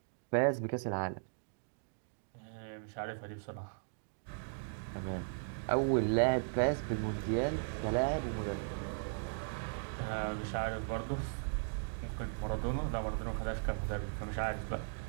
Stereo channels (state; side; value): silent; left; digital silence